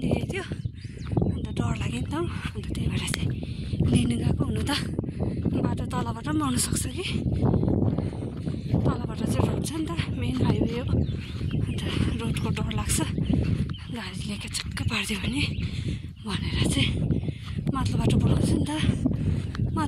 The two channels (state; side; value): identical; both; correlation 1.00